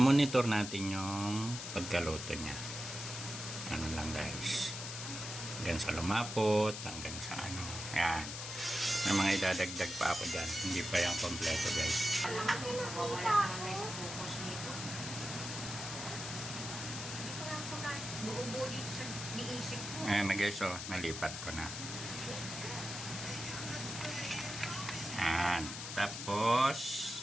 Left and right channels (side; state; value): left; noise; hiss, 7 dB below the sound